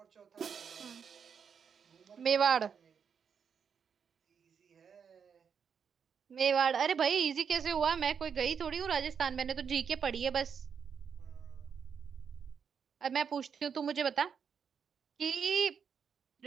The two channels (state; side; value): quieter; left; 6.9 dB